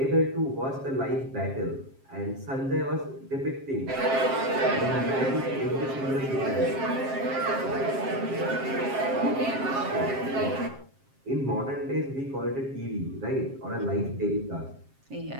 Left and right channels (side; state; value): left; late; 7.4 ms